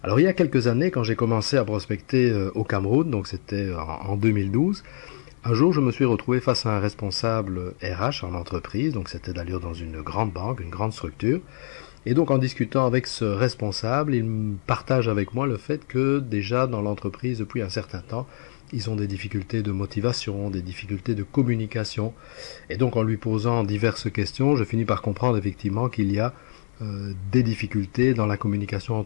Alors il y a quelques années, quand j'ai commencé à prospecter au Cameroun, donc c'était en 2012, un jour je me suis retrouvé face à un responsable RH en entreprise, donc c'était d'ailleurs dans une grande banque, une grande structure, et donc en discutant avec ce responsable, il me partage avec moi le fait que déjà dans l'entreprise depuis un certain temps, ils ont des difficultés de motivation, des difficultés de communication, et donc en lui posant diverses questions, je finis par comprendre effectivement qu'il y a des difficultés dans la communication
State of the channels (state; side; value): silent; right; 62 dB below the other